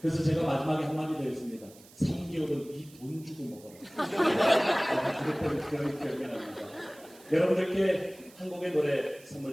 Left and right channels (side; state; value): right; noise; hiss, 23 dB below the sound